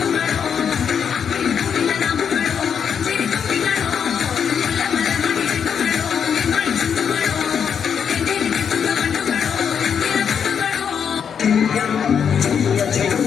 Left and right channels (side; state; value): right; quieter; 7.4 dB